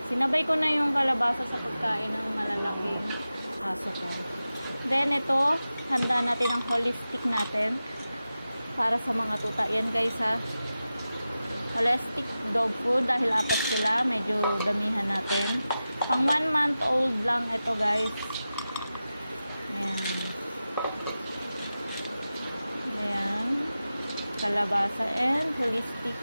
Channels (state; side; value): inverted; both; correlation -0.94